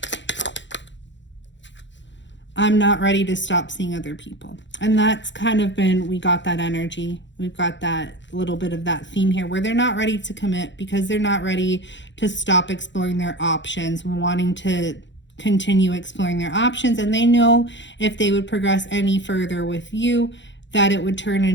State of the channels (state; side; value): late; right; 0.53 ms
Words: I'm not ready to stop seeing other people. And that's kind of been, we got that energy. We've got that little bit of that theme here where they're not ready to commit because they're not ready to stop exploring their options, wanting to continue exploring their options. And they know if they would progress any further with you, that it would turn